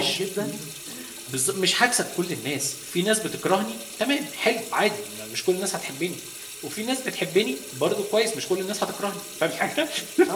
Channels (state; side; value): identical; both; correlation 1.00